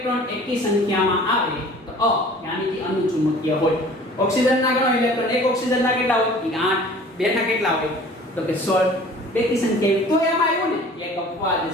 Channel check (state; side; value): normal; both; correlation 0.47